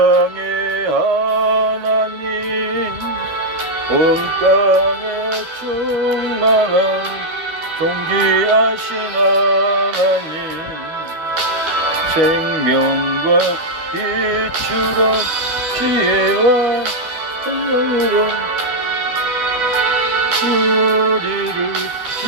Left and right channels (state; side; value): late; left; 13 ms